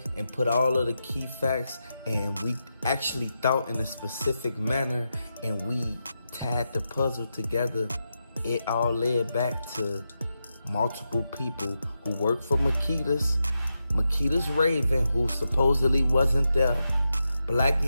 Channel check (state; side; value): inverted; both; correlation -0.87